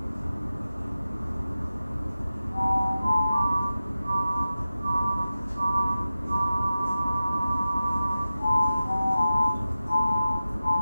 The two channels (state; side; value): inverted; both; correlation -0.95